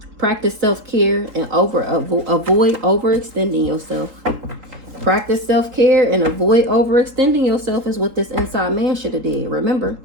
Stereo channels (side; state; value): left; late; 3.8 ms